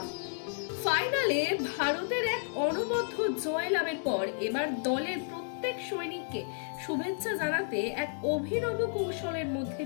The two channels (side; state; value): right; silent; digital silence